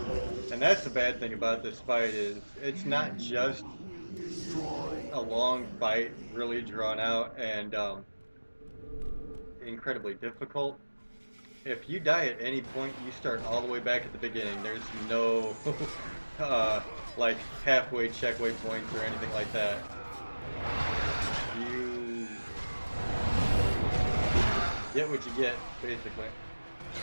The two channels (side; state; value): both; inverted; correlation -1.00